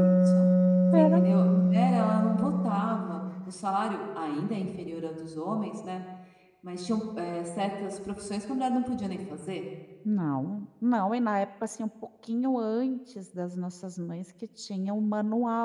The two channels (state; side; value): identical; both; correlation 1.00